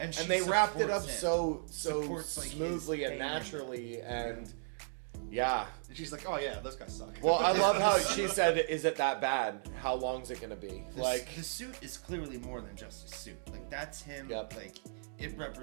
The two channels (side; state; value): left; silent; digital silence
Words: she they wrapped it up supports him. so Supports, like, his smoothly and pain. naturally, and yeah. And she's like, oh yeah, those guys suck. Well, I love how she said, "Is it that bad? How long's it gonna be?" Like the suit is clearly more than just a suit. Like that's him. Yep. Like it